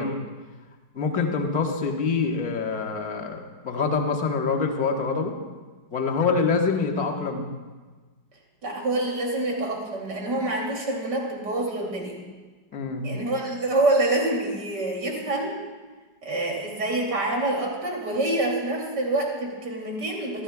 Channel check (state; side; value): late; left; 5.2 ms